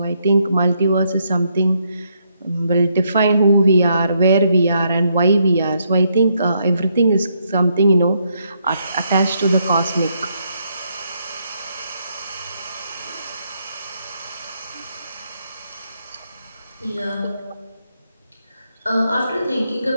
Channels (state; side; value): inverted; both; correlation -0.76